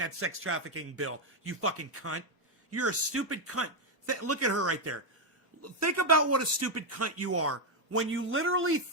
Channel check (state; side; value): normal; both; correlation 0.03